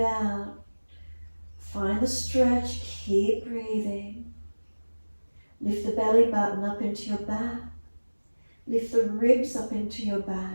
out. Find the stretch, keep breathing. Lift the belly button up into your back. Lift the ribs up into your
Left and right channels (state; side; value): inverted; both; correlation -1.00